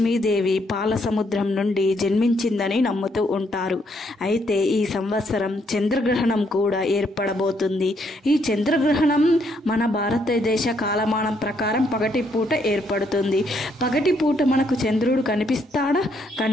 పాల సముద్రం నుండి జన్మించిందని నమ్ముతూ ఉంటారు. అయితే ఈ సంవత్సరం చంద్రగ్రహణం కూడా ఏర్పడబోతుంది. ఈ చంద్రగ్రహణం మన భారతదేశ కాలమానం ప్రకారం పగటిపూట ఏర్పడుతుంది. పగటిపూట మనకు చంద్రుడు కనిపిస్తాడా?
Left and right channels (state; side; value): normal; both; correlation 0.72